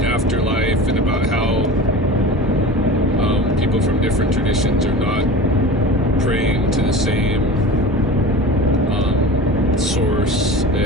afterlife and about how people from different traditions are not praying to the same source,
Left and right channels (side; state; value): both; normal; correlation 0.34